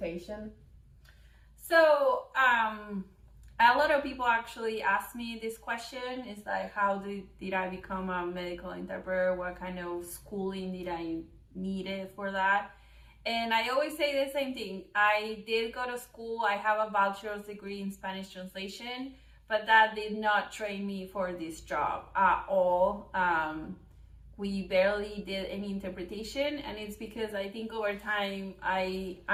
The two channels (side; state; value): both; identical; correlation 1.00